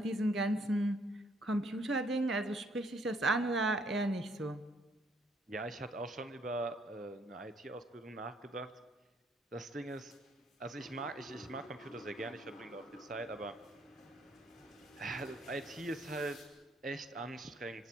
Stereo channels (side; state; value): both; normal; correlation 0.67